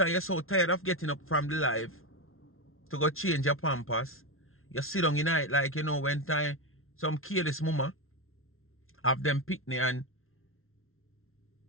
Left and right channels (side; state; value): right; late; 0.62 ms